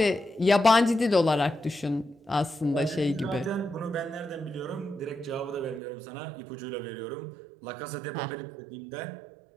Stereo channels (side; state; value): left; drops out; at 5.8 s